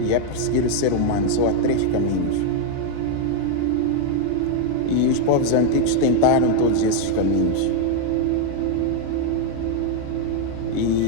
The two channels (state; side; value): different; both; correlation 0.00